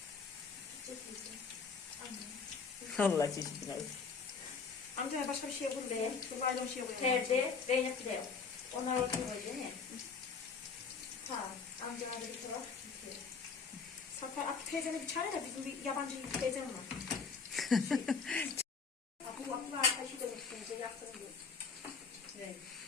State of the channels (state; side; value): quieter; right; 5.3 dB